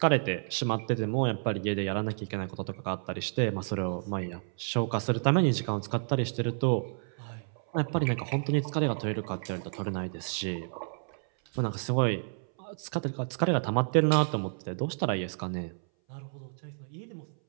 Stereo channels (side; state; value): left; silent; 57 dB below the other